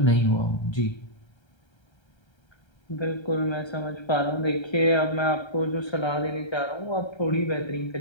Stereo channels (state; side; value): late; right; 1.3 ms